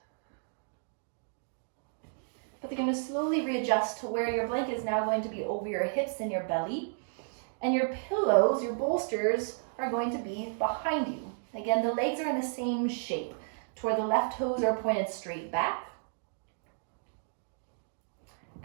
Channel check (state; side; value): silent; left; digital silence